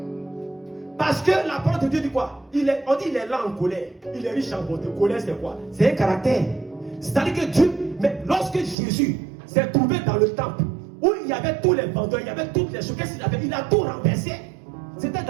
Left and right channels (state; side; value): drops out; left; at 8.8 s